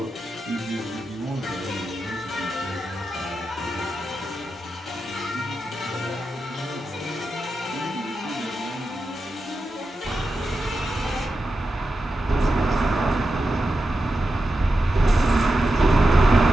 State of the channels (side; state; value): both; normal; correlation 0.90